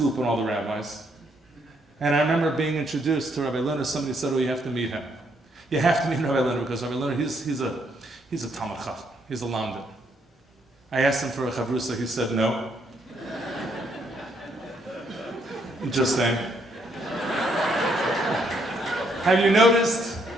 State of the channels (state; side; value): normal; both; correlation 0.73